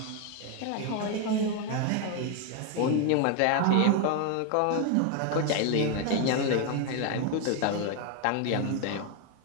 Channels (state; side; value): different; both; correlation 0.01